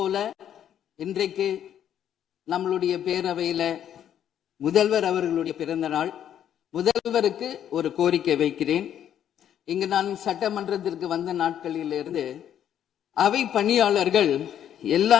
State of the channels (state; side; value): quieter; right; 10.0 dB